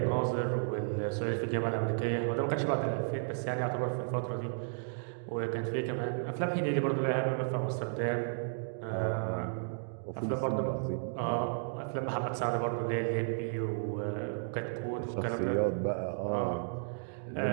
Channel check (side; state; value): left; silent; digital silence